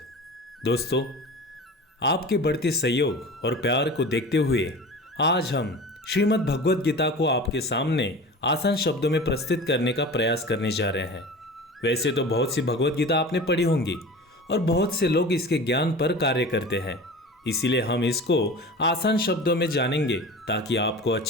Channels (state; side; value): normal; both; correlation 0.36